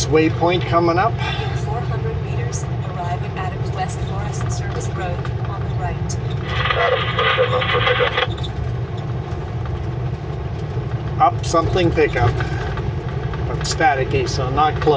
waypoint coming up. In 400 meters, arrive at Adams West Forest Service Road on the right. Adam, 27 up for pickup. Up something pickup. But staticky, so not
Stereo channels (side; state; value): both; identical; correlation 1.00